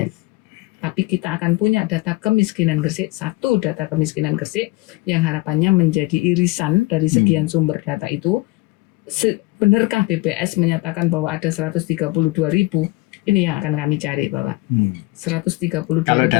Tapi kita akan punya data kemiskinan Gresik, 1 data kemiskinan Gresik yang harapannya menjadi irisan dari sekian sumber data itu. Benarkah BPS menyatakan bahwa ada 132.000? Ini yang akan kami cari, Bapak. 132.000. Kalau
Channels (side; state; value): right; quieter; 20.6 dB